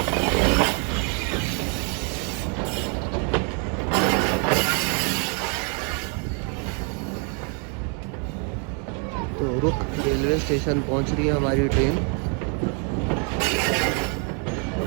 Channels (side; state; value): left; quieter; 38.8 dB